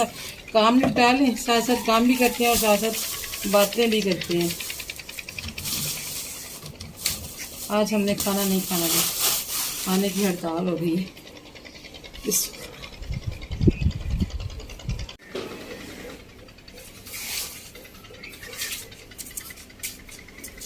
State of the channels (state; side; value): identical; both; correlation 1.00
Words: काम निपटा लें, साथ साथ काम भी करते हैं और साथ साथ बातें भी करते हैं। आज हमने खाना नहीं खाना था, खाने की हड़ताल हो गई है।